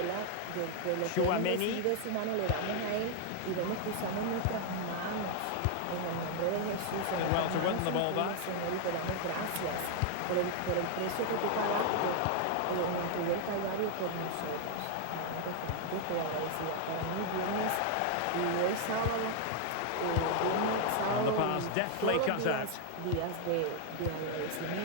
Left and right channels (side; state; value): both; different; correlation 0.00